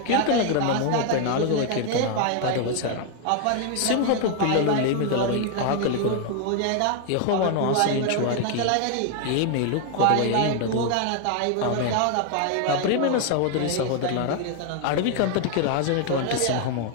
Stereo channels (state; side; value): different; both; correlation 0.00